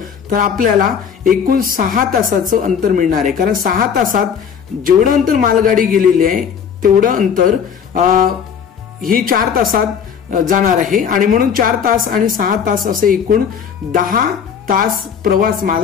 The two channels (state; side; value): quieter; right; 7.4 dB